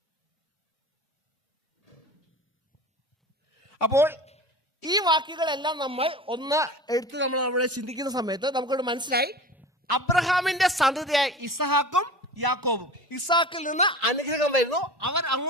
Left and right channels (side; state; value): both; normal; correlation 0.35